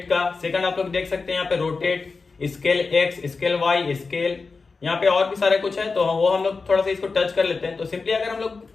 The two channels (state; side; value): quieter; right; 4.3 dB